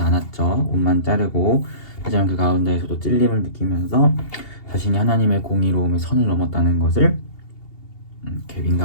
않았죠. 옷만 자르고, 하지만 그 가운데에서도 찔림을 느끼면서 자신이 하나님의 공의로움의 선을 넘었다는 것을 이렇게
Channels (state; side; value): late; right; 2.8 ms